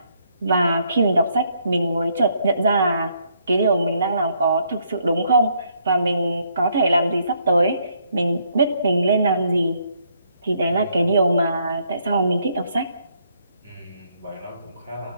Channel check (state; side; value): inverted; both; correlation -0.71